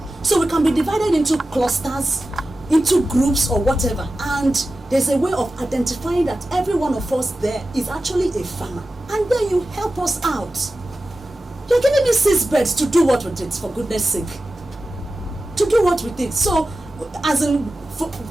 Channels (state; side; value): normal; both; correlation 0.94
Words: we can be divided into clusters, into groups or whatever. And there's a way of identifying that every one of us there is actually a farmer. And then you help us out. You're giving me 6 birds to do what with it, for goodness sake. To do what with it? So, as in,